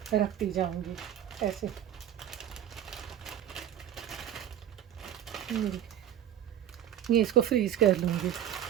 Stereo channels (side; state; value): left; quieter; 10.7 dB